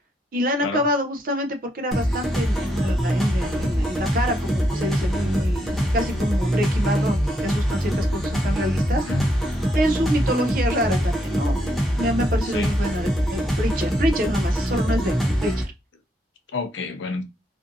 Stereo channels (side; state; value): both; normal; correlation 0.77